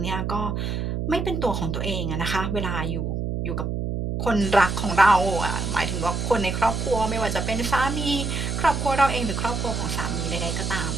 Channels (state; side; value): noise; right; hum, 2 dB below the sound